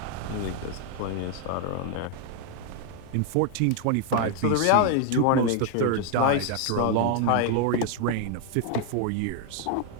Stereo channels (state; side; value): different; both; correlation 0.00